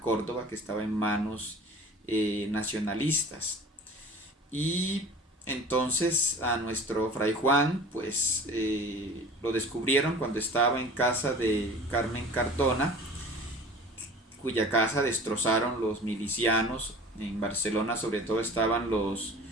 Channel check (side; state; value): both; normal; correlation 0.43